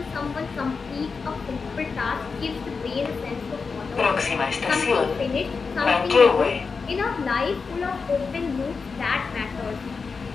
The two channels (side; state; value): right; quieter; 4.9 dB